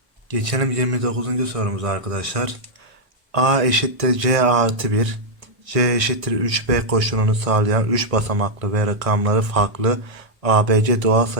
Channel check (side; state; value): left; late; 1.6 ms